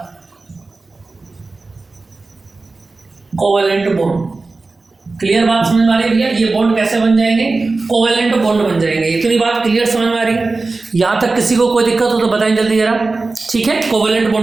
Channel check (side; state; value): left; quieter; 3.6 dB